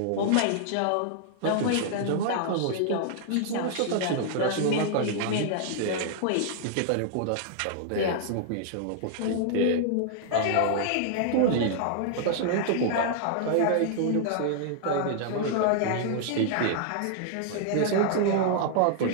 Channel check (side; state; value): both; different; correlation -0.01